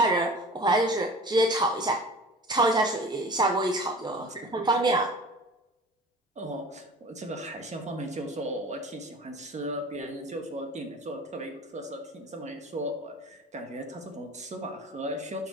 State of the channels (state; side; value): normal; both; correlation 0.41